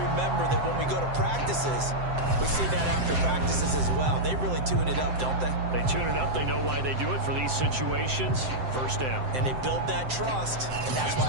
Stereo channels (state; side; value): late; left; 7.7 ms